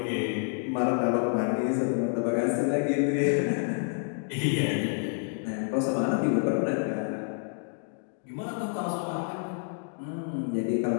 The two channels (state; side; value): silent; right; 59 dB below the other